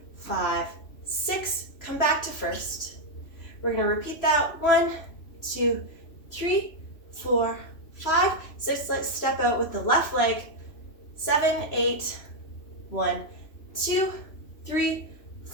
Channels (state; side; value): late; right; 3.0 ms